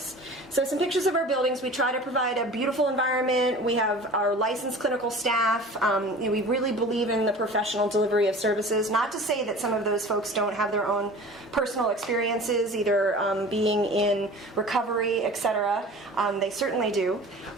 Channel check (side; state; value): both; normal; correlation 0.41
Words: So some pictures of our buildings. We try to provide a beautiful environment. We have our licensed clinical staff. We really believe in the professional delivery of services. Not to say that some of those folks don't have their own personal experiences, either being in recovery, etc. They certainly do.